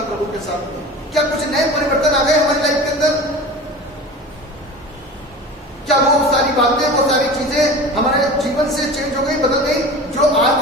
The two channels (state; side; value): normal; both; correlation 0.35